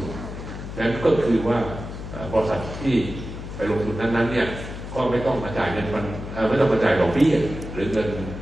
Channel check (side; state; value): left; noise; hum, 9 dB below the sound